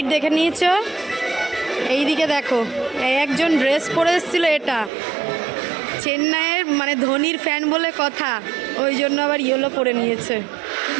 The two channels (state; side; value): drops out; left; at 4.9 s